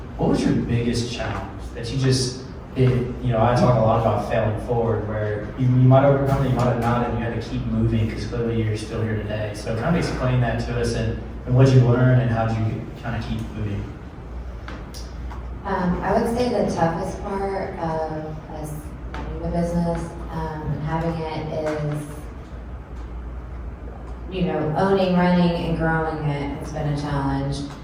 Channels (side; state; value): both; identical; correlation 1.00